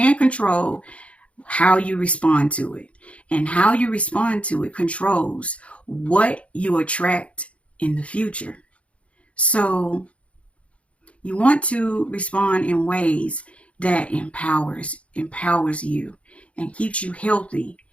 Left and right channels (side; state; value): right; late; 0.063 ms